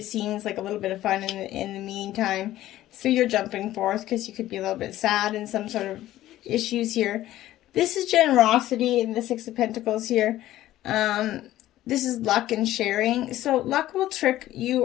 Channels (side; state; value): right; quieter; 14.4 dB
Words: seems like a little bit of fun in the meantime. So you're jumping forth because you could be a little bit sad in some sort of issues here. This is generosity in the Six of Pentacles here. This is luck and sharing. So luck will trick you